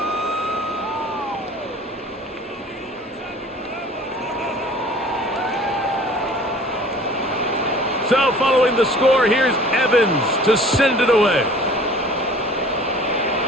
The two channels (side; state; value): both; normal; correlation 0.47